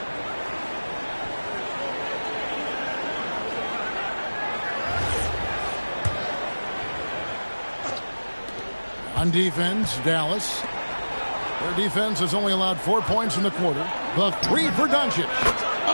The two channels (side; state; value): both; inverted; correlation -1.00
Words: On defense, Dallas. Their defense has only allowed 4 points in the quarter. The three for Doncic.